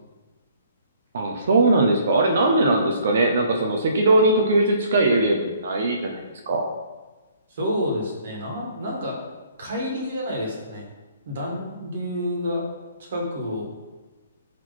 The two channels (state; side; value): inverted; both; correlation -0.61